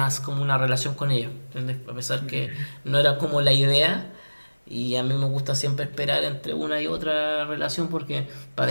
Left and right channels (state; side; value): inverted; both; correlation -1.00